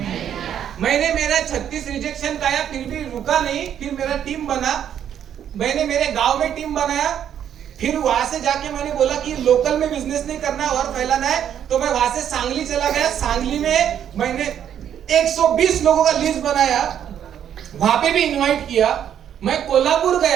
मैंने मेरा 36 रिजेक्शन खाया, फिर भी रुका नहीं। फिर मेरा टीम बना, मैंने मेरे गांव में टीम बनाया। फिर वहां से जाके मैंने बोला कि लोकल में बिजनेस नहीं करना है और फैलाना है, तो मैं वहां से सांगली चला गया। सांगली में मैंने 120 लोगों का लिस्ट बनाया, वहां पे भी इनवाइट किया। मैं कोल्हापुर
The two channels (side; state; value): left; quieter; 9.6 dB